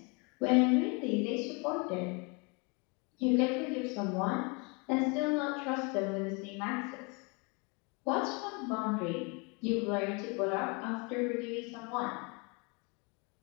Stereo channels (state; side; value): quieter; right; 31.4 dB